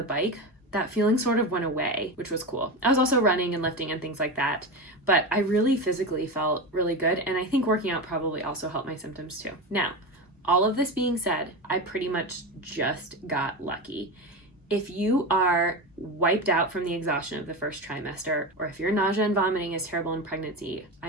bike, that feeling sort of went away, which was cool. I was also running and lifting and things like that, but I really physically felt really good. And I think working out probably also helped my symptoms too. Now, all of this being said, I pretty much just got lucky. If you are wiped out from the exhaustion of the first trimester, or if your nausea and vomiting is terrible in pregnancy, I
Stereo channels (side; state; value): both; normal; correlation 0.21